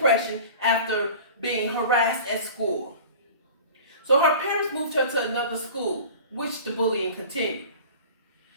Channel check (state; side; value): inverted; both; correlation -0.40